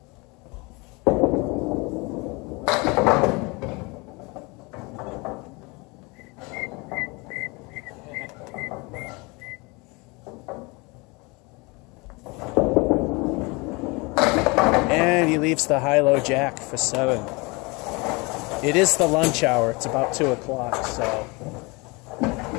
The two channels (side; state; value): right; quieter; 26.9 dB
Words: And he leaves the high-low jack for 7. It is the lunch hour. It's about 2 o'clock, so